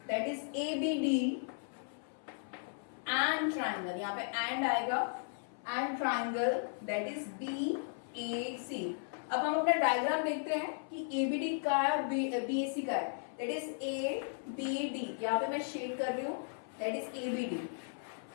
that is ABD and triangle, यहाँ पे एंड आएगा, and triangle that is BAC। अब हम अपना डायग्राम देखते हैं कि ABD का है और BAC का है, दैट इज ABD। यहाँ पे मैं शेड कर रही हूँ, that is ABD,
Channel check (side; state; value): right; silent; 54 dB below the other